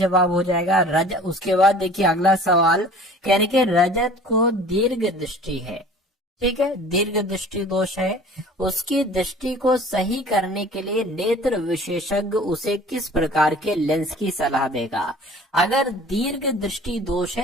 हो जाएगा। उसके बाद देखिए अगला सवाल, कहने के रजत को दीर्घ दृष्टि है, ठीक है, दीर्घ दृष्टि दोष है, उसकी दृष्टि को सही करने के लिए नेत्र विशेषज्ञ उसे किस प्रकार के लेंस की सलाह देगा। अगर दीर्घ दृष्टि दोष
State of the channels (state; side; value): normal; both; correlation 0.46